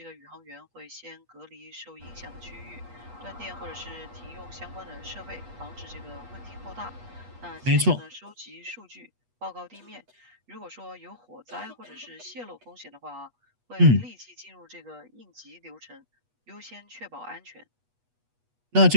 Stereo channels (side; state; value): left; late; 8.2 ms